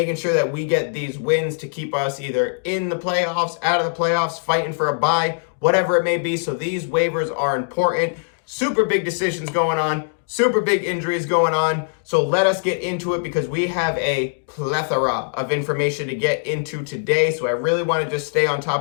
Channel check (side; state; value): right; silent; digital silence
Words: sure that we get these wins to keep us either in the playoffs, out of the playoffs, fighting for a bye, whatever it may be. So these waivers are important. Super big decisions going on. Super big injuries going on. So let us get into it, because we have a plethora of information to get into today. So I really want to just stay on